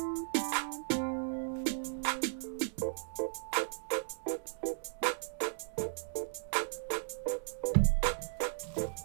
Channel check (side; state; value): left; silent; digital silence